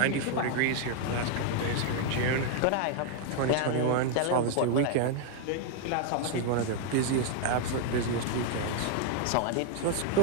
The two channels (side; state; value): both; different; correlation 0.00